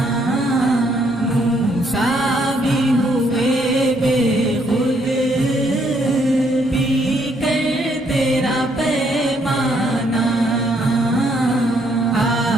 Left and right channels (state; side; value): noise; left; hum, 27 dB below the sound